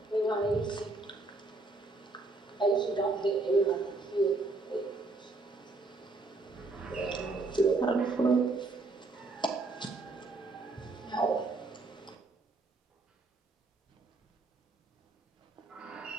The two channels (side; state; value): left; quieter; 3.3 dB